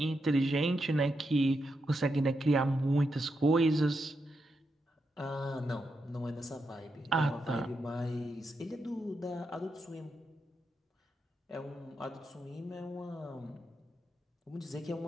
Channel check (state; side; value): normal; both; correlation 0.85